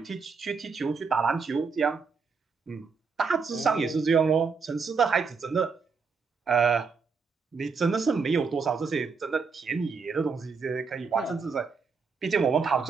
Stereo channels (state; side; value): quieter; left; 5.1 dB